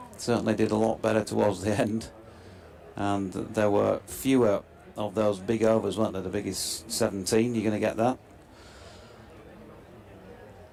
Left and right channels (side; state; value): both; identical; correlation 1.00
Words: Certainly did a lot better towards the end, and there were fewer of those big overs, weren't there? The biggest 17, you're going to get that.